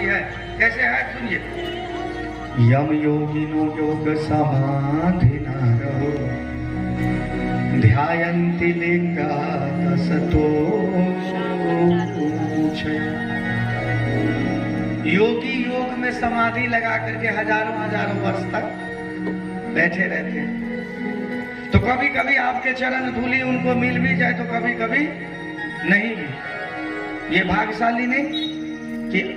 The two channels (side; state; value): both; identical; correlation 1.00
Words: है। कैसे है सुनिए। यम योगिनो योग समाधि नारो ध्यायन्ति लिंगासतो। योगी योग में समाधि लगा करके हजारों वर्ष तक बैठे रहते हैं। तो कभी कभी आपके चरण धूली उनको मिल भी जाए, तो कभी कभी नहीं भी। ये भाग्यशाली नहीं कि